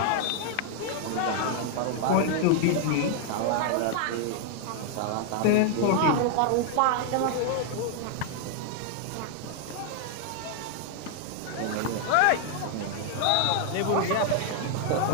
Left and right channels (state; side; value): different; both; correlation 0.00